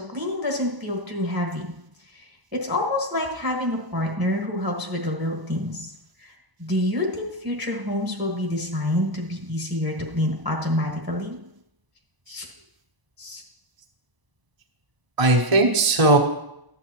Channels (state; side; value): late; left; 1.0 ms